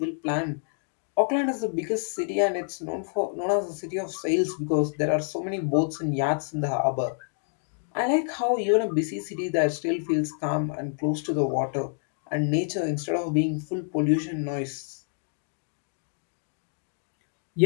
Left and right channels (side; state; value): right; silent; digital silence